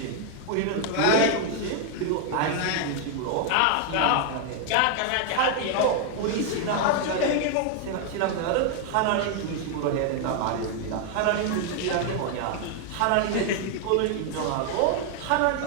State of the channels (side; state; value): both; different; correlation 0.00